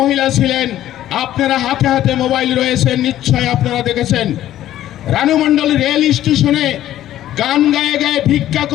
ছিলেন। আপনারা হাতে হাতে মোবাইল রয়েছে, নিশ্চয় আপনারা দেখেছেন। রানু মণ্ডল রেল স্টেশনে গান গায়ে গায়ে ভিক্ষা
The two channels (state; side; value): quieter; right; 12.8 dB